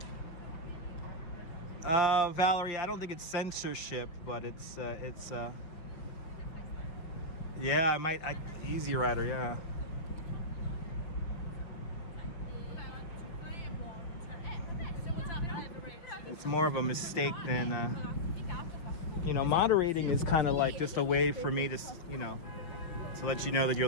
Valerie, I don't think it's censorship, but it's yeah, I might Easy Rider, yeah. It's more of a mistake than you know, moderating is kind of like just a way for me to, you know, to let you know that you're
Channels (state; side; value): late; right; 6.0 ms